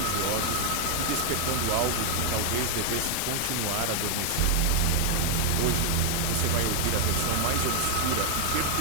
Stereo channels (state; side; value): different; both; correlation 0.00